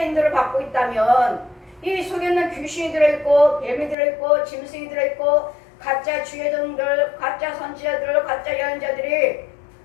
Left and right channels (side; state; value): right; drops out; at 4.0 s